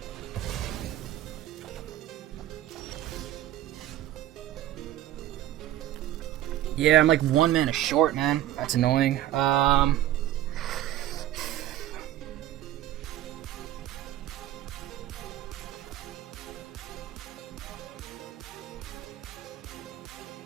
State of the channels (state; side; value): quieter; left; 13.1 dB